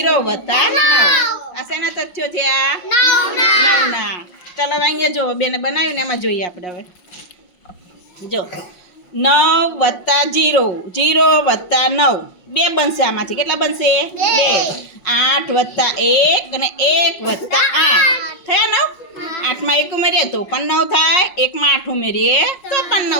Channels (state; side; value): late; right; 5.6 ms